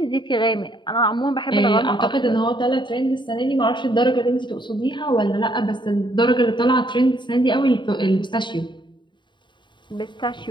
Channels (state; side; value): late; right; 0.23 ms